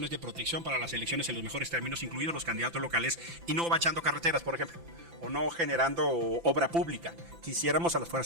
de protección para las elecciones en los mejores términos, incluidos los candidatos locales, y no bachando carreteras, por ejemplo, o no generando obra pública. Quisiéramos a las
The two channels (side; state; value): left; late; 5.9 ms